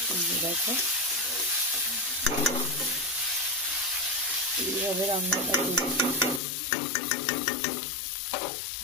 দেখো এইভাবে রান্নাটা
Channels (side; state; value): right; drops out; at 6.4 s